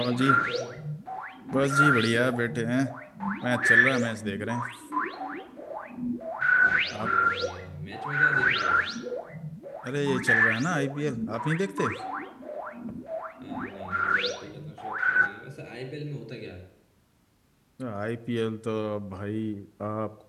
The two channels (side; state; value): both; identical; correlation 1.00